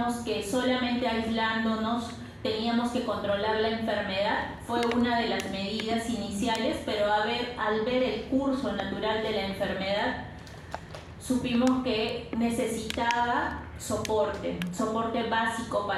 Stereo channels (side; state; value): both; identical; correlation 1.00